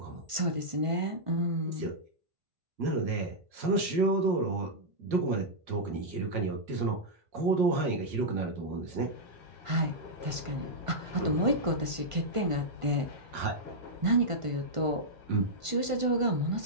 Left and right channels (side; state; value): left; late; 1.5 ms